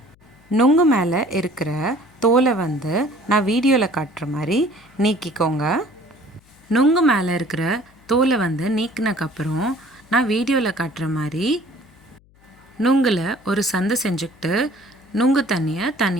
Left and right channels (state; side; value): noise; left; hum, 30 dB below the sound